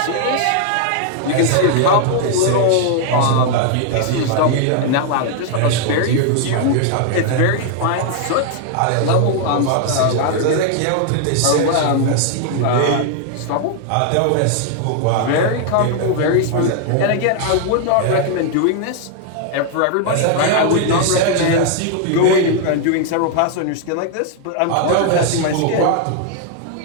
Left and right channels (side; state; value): both; different; correlation 0.00